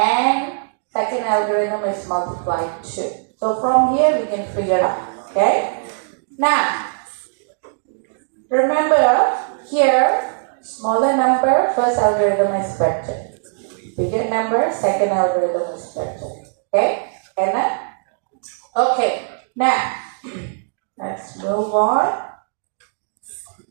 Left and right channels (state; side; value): silent; left; digital silence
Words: second algorithm is multiply 2. So from here, we can figure out. Okay? Now, remember here, smaller number, first algorithm is better. Bigger number, second algorithm is better. Okay? And then, okay. Now, let's move on.